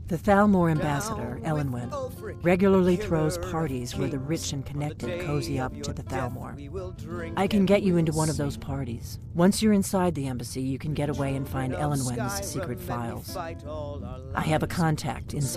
The Thalmor ambassador, Down Elenwen, with Ulfric, regularly killer throws of parties where the kings. rich and On the connected day cozy of up to your the death, Thalmor. we will drink I can and get you we into will one of those sing. parties. Once you're inside the embassy, you can get away and find Of Elenwen's Skyrim, secret and we files. fight all our I have a lives. contact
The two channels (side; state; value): both; identical; correlation 1.00